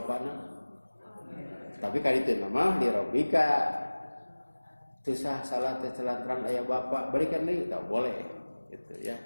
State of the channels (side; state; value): both; inverted; correlation -1.00